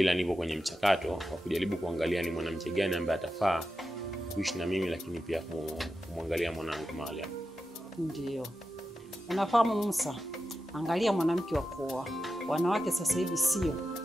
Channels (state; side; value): normal; both; correlation 0.91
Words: nipo kwenye mchakato wa kujaribu kuangalia ni mwanamke gani ambaye atafaa kuishi na mimi, lakini pia kumwangalia mwanangu Mariam. Ndio. Unafahamu Musa, angalia mwanamke wa kuoa. Wanawake sasa hivi